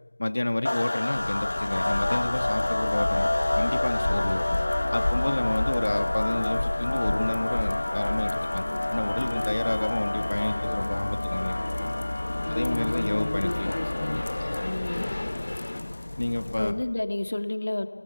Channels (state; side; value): inverted; both; correlation -1.00